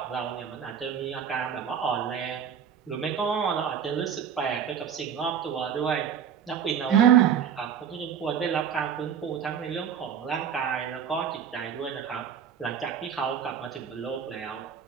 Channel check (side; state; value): left; quieter; 7.9 dB